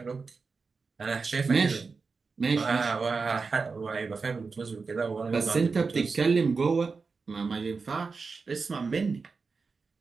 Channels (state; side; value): quieter; left; 4.6 dB